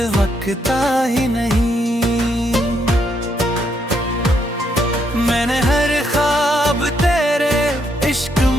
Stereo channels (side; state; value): both; normal; correlation 0.75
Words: वकता ही नहीं। मैंने हर ख्वाब तेरे इश्क